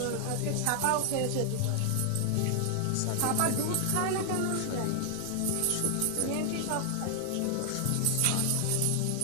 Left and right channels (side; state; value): both; different; correlation 0.00